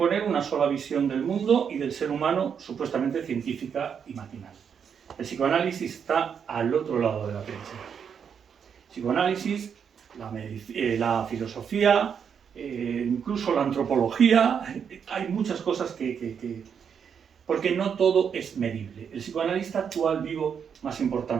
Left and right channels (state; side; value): quieter; left; 7.3 dB